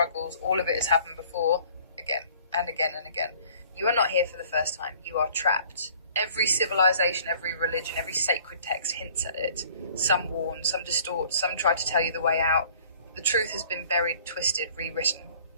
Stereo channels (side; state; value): both; inverted; correlation -0.54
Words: all of it has happened before, again and again and again. You are not here for the first time. You are trapped. Every civilization, every religion, every sacred text hints at it. Some warn, some distort, some try to tell you the way out. The truth has been buried, twisted, rewritten.